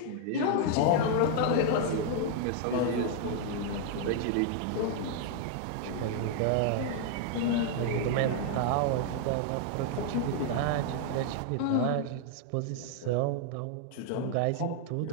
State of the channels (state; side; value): different; both; correlation 0.00